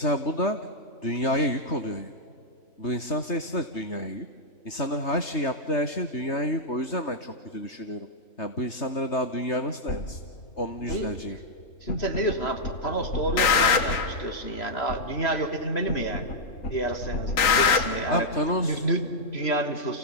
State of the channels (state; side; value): late; right; 3.8 ms